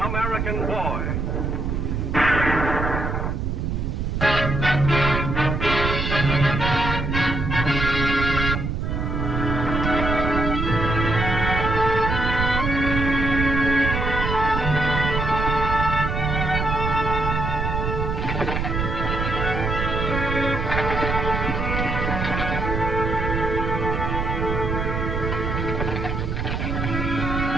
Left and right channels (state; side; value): noise; right; rumble, 1 dB below the sound